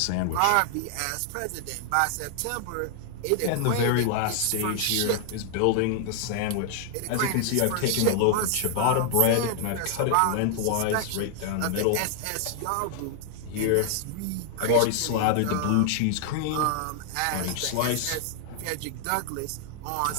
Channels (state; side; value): different; both; correlation 0.00